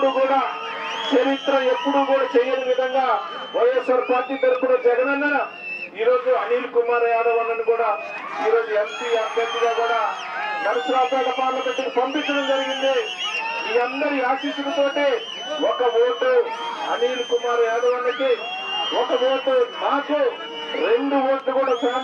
కూడా చేయని విధంగా వైఎస్ఆర్ పార్టీ తరఫున జగనన్న ఈరోజు అనిల్ కుమార్ యాదవ్ అన్నను కూడా ఈరోజు ఎంపీ అభ్యర్థిగా కూడా నరసరావుపేట పార్లమెంట్ పంపించడం జరిగింది. మీ అందరి ఆశీస్సులతోటి ఒక ఓటు అనిల్ కుమార్ యాదవ్ అన్నకి, ఒక ఓటు నాకు, 2 ఓట్లు కూడా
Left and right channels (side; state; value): both; identical; correlation 1.00